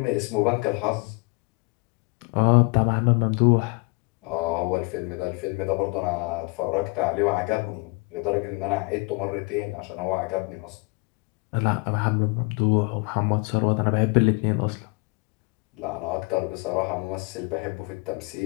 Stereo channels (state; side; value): quieter; right; 29.1 dB